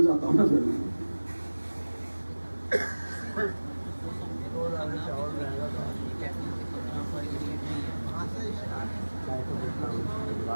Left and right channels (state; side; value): inverted; both; correlation -1.00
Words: जाता हूं ना फिर मैं।